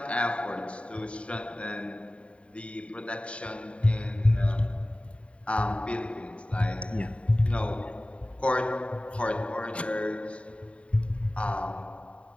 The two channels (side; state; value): right; late; 0.062 ms